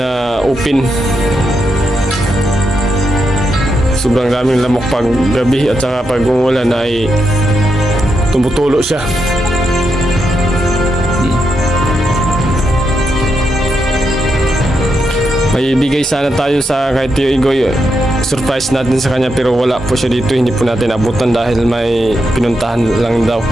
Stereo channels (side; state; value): both; normal; correlation 0.83